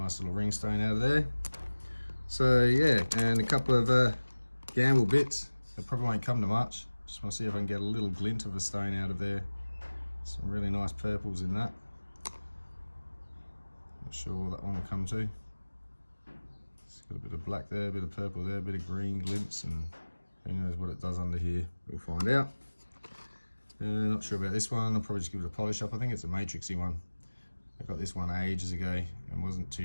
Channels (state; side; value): inverted; both; correlation -1.00